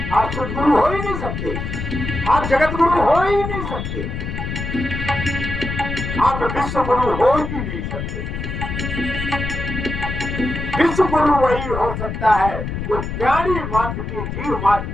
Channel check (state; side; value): noise; left; rumble, 5 dB below the sound